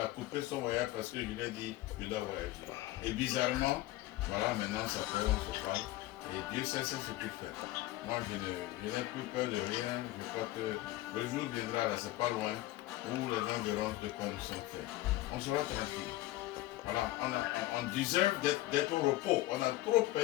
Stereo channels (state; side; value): quieter; right; 16.9 dB